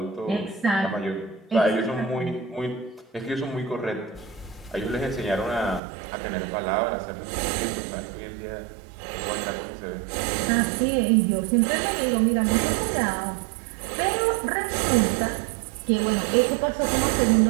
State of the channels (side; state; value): left; drops out; at 5.8 s